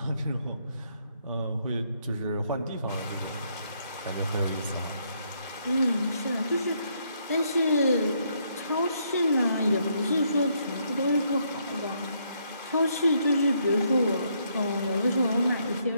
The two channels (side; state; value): both; inverted; correlation -0.73